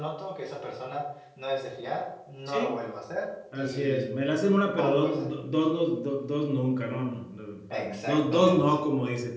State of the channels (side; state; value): both; identical; correlation 1.00